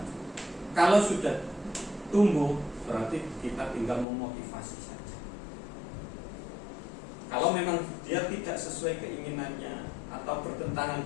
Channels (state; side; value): drops out; right; at 4.0 s